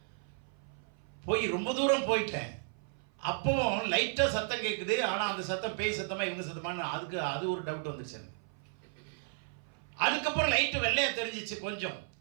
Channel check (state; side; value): silent; left; 55 dB below the other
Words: போய் ரொம்ப தூரம் போயிட்டேன். அப்பவும் லைட்டாக சத்தம் கேட்குது. ஆனால் அந்த சத்தம் பேய் சத்தமாக இவங்க சத்தமானு அது ஒரு டவுட் வந்துருச்சு எனக்கு. அதுக்கப்புறம் லைட்டு வெள்ளையாக தெரிஞ்சிச்சு கொஞ்சம்.